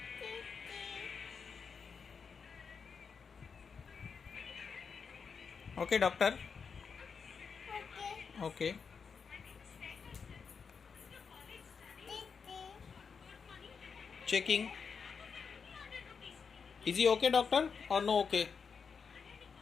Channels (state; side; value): quieter; right; 5.8 dB